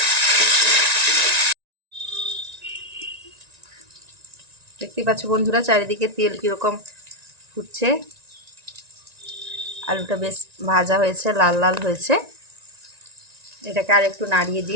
দেখতেই পাচ্ছ বন্ধুরা চারিদিকে তেল কীরকম ফুটছে। আলুটা বেশ ভাজা হয়েছে, লাল লাল হয়েছে। এটাকে আর একটু নাড়িয়ে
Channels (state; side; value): late; left; 1.9 ms